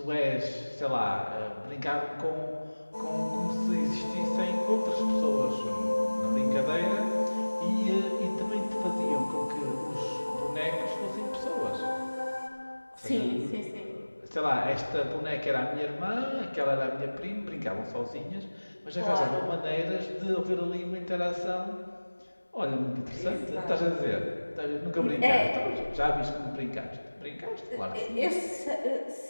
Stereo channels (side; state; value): both; inverted; correlation -1.00